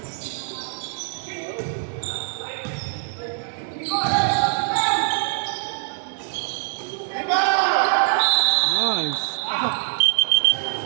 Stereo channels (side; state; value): left; silent; digital silence